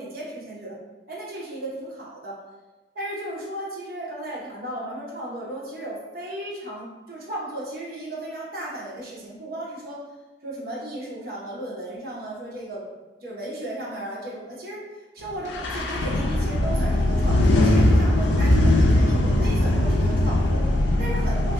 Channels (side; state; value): both; normal; correlation 0.79